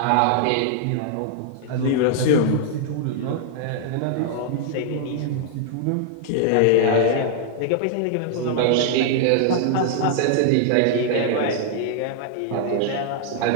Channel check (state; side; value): different; both; correlation -0.01